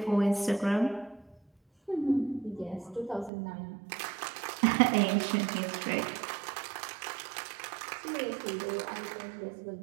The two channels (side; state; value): left; drops out; at 3.3 s